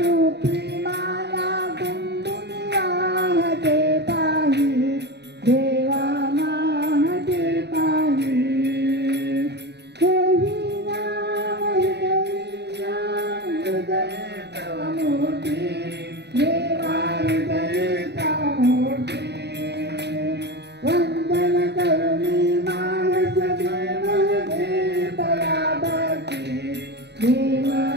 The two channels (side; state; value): left; late; 0.49 ms